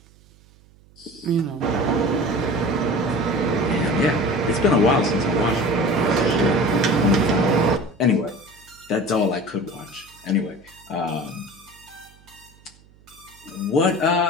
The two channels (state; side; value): noise; right; hum, 28 dB below the sound